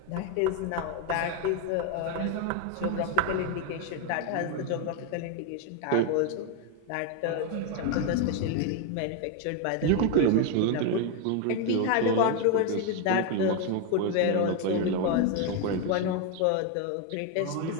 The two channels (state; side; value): different; both; correlation 0.01